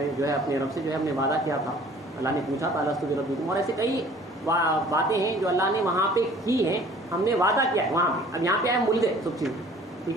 ہے اپنے رب سے جو ہے ہم نے وعدہ کیا تھا. اللہ نے پوچھا تھا الستو بربکم, اور ایسے کئی باتیں ہیں جو اللہ نے وہاں پہ کی ہیں, ہم نے وعدہ کیا ہے وہاں پہ. اب یہاں پہ آئے مل گئے سب چیز,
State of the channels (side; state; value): both; normal; correlation 0.51